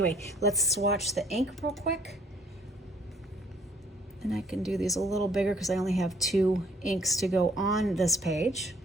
let's swatch the ink real quick. And I can do these a little bigger because I only have 2 inks to go on this page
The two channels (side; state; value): both; normal; correlation 0.62